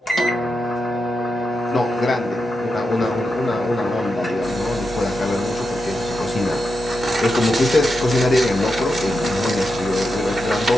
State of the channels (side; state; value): both; normal; correlation 0.87